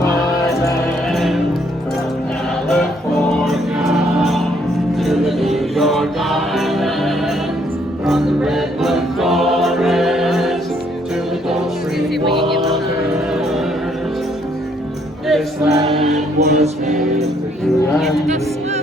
land. From California to the New York Island, from the redwood forest to the Gulf Stream waters, this land was made for you and me.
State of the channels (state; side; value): normal; both; correlation 0.68